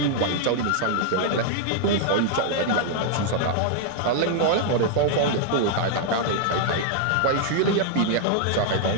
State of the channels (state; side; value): different; both; correlation -0.01